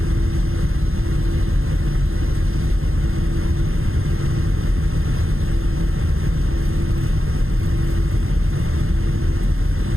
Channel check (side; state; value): left; late; 0.61 ms